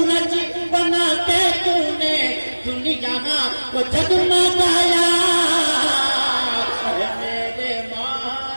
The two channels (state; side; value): inverted; both; correlation -1.00